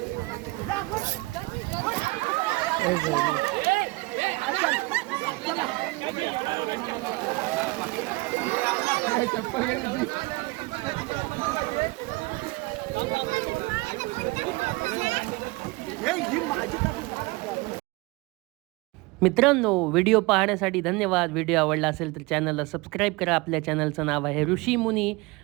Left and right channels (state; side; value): quieter; left; 23.4 dB